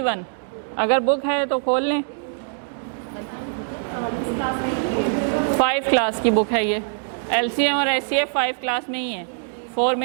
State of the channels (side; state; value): left; silent; digital silence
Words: अगर book है तो खोल लें। 5 क्लास की बुक है ये। LCM और SCF 5 क्लास में ही है, 4